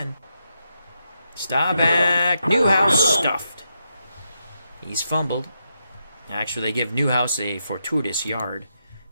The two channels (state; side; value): inverted; both; correlation -0.83